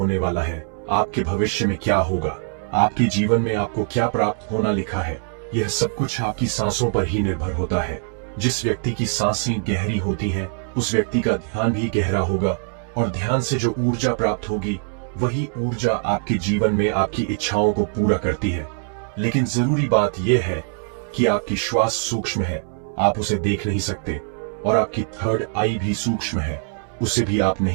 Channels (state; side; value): silent; left; 56 dB below the other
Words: वाला है, आपके भविष्य में क्या होगा, आपके जीवन में आपको क्या प्राप्त होना लिखा है, यह सब कुछ आपकी सांसों पर ही निर्भर होता है। जिस व्यक्ति की सांसें गहरी होती हैं, उस व्यक्ति का ध्यान भी गहरा होगा और ध्यान से जो ऊर्जा प्राप्त होगी, वही ऊर्जा आपके जीवन में आपकी इच्छाओं को पूरा करती है। लेकिन जरूरी बात यह है कि आपकी श्वास सूक्ष्म है, आप उसे देख नहीं सकते, और आपकी थर्ड आई भी सूक्ष्म है, उसे भी आप